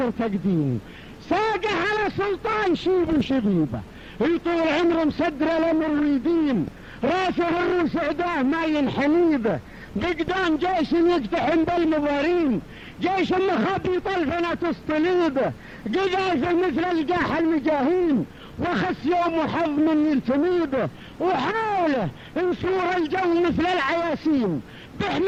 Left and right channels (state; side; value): identical; both; correlation 1.00